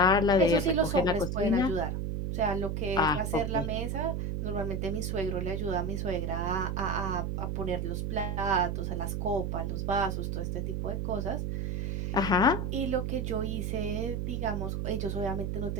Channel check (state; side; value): noise; right; hum, 1 dB below the sound